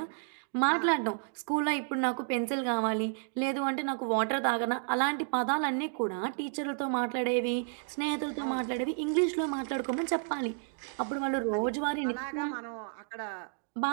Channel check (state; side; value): silent; left; 57 dB below the other